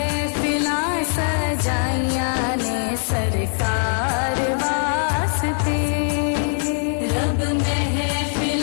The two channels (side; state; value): right; silent; digital silence